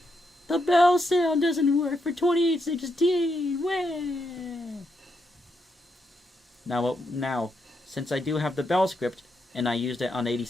The bell sound doesn't work for 2816. Wah! Now, since I do have the bell script, and I used it on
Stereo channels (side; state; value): both; normal; correlation 0.81